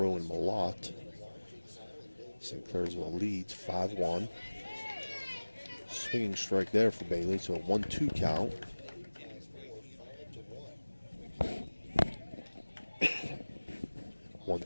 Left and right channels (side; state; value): both; inverted; correlation -1.00